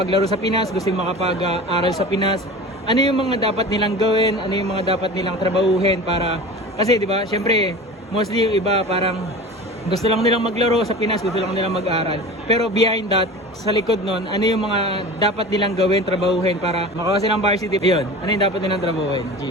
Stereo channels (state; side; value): normal; both; correlation 0.35